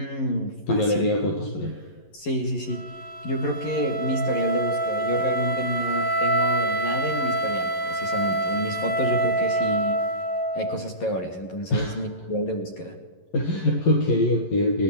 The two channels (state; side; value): late; right; 11 ms